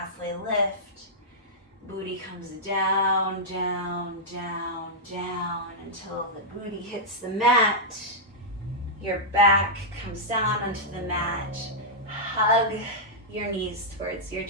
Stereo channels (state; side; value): normal; both; correlation -0.09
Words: lift. Booty comes down, down, down, down until the booty hits the mat. Your back comes down onto the mat. Hug your knees towards your